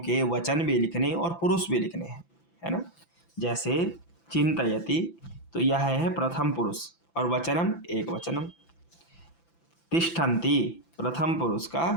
वचन भी लिखने और पुरुष भी लिखने हैं, है ना। जैसे चिंतयति, तो यह है प्रथम पुरुष और वचनम एक वचनम। तिष्ठन्ति प्रथम पुरुष का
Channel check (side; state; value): right; late; 5.9 ms